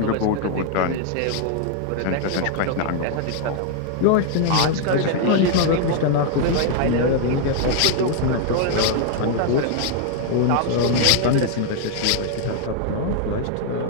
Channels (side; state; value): both; different; correlation 0.00